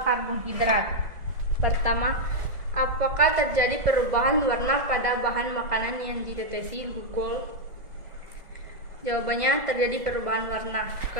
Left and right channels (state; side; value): late; left; 1.7 ms